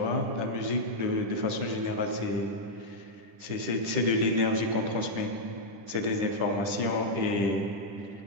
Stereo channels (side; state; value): left; late; 10 ms